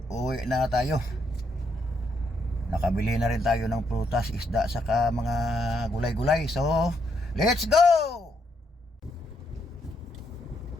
Uwi na tayo. Nakabili na rin tayo ng prutas, isda, saka mga gulay-gulay. So, let's go!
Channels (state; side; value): normal; both; correlation 0.76